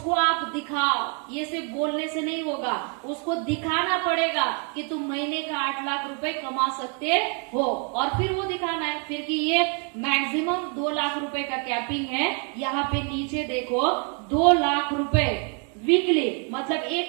आप दिखाओ, ये सिर्फ बोलने से नहीं होगा, उसको दिखाना पड़ेगा कि तुम महीने का 8 लाख रुपए कमा सकते हो। और फिर वो दिखाना है फिर कि ये मैक्सिमम 2 लाख रुपए का कैपिंग है। यहाँ पे नीचे देखो 2 लाख रुपए वीकली, मतलब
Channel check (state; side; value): quieter; left; 39.0 dB